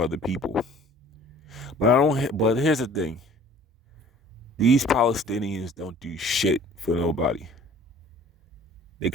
people. But I don't. But here's the thing: these Palestinians don't do shit for nobody. They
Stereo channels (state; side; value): normal; both; correlation 0.50